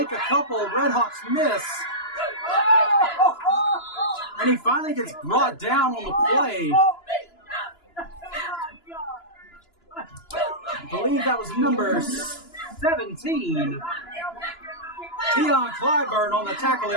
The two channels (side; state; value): right; late; 2.9 ms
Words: a couple Red Hawks miss. And he finally gets brought down on the play. I believe that was number 17. Tion Clyburn on the tackle